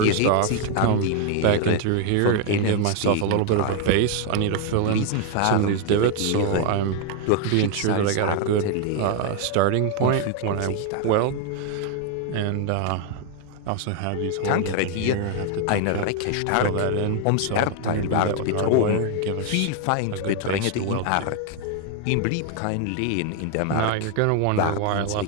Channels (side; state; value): both; different; correlation 0.00